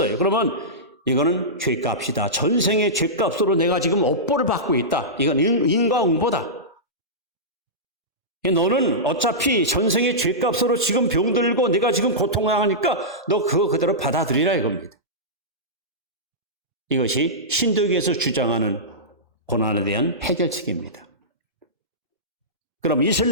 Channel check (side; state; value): both; normal; correlation -0.15